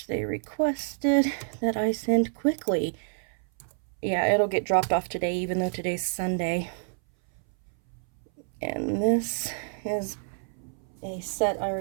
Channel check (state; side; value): silent; left; 59 dB below the other